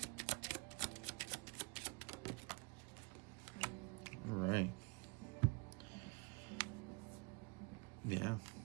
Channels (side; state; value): left; quieter; 29.0 dB